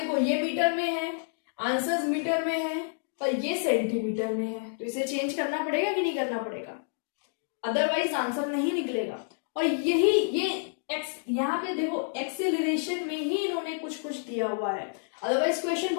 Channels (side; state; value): right; silent; digital silence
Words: ये मीटर में है, आंसर्स मीटर में है, पर ये सेंटीमीटर में है, तो इसे चेंज करना पड़ेगा कि नहीं करना पड़ेगा? अदरवाइज आंसर नहीं निकलेगा। और यही ये एक्स, यहाँ पे देखो एक्सेलरेशन में ही इन्होंने कुछ कुछ दिया हुआ है, अदरवाइज क्वेश्चन